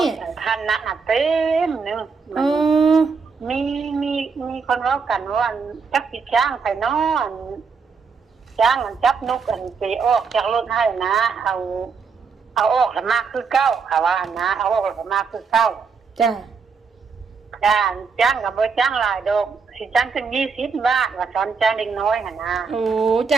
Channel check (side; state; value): left; quieter; 5.4 dB